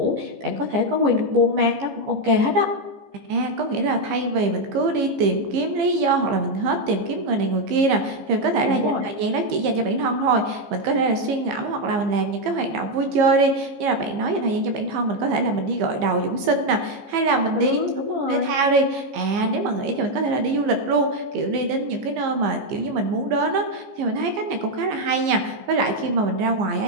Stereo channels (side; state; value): left; late; 15 ms